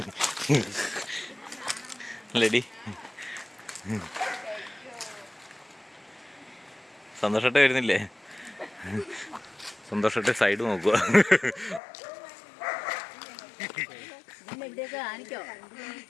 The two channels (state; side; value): drops out; right; at 11.8 s